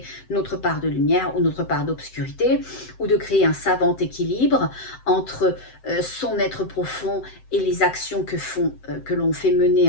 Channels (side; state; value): right; late; 7.8 ms